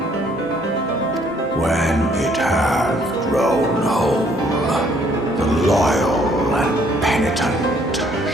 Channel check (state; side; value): normal; both; correlation 0.64